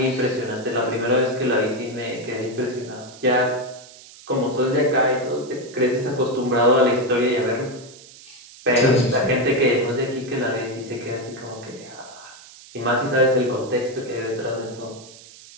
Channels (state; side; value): noise; right; hiss, 20 dB below the sound